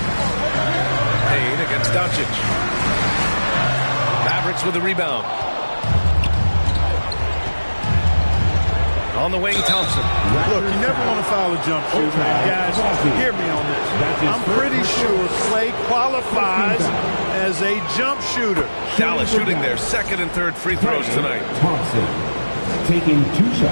Payne against Doncic. Mavericks with the rebound. On the wing, Thompson. Look, you never want to foul a jump shooter. Guys, hear me on this. I'm pretty sure Clay qualifies as a jump shooter. Dallas shooting their second and third free throws tonight. Thompson taking 2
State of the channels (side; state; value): both; inverted; correlation -1.00